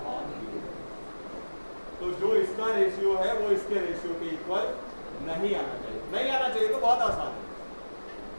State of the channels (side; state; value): both; inverted; correlation -1.00